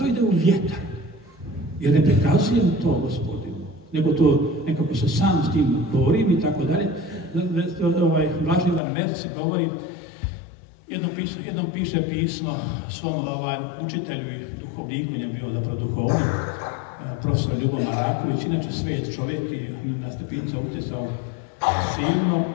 ide u vjetar. Jer ne prikazujem to Gospodinu, nego to nekako se sam s tim borim i tako dalje. Blaženi Ivan Merci govori, jednom piše pismo svom učitelju i duhovniku, on je bio zapravo duhovnik, profesor Ljubomir Raković, inače svet čovjek i na stepinca utjecao silno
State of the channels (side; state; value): right; drops out; at 8.8 s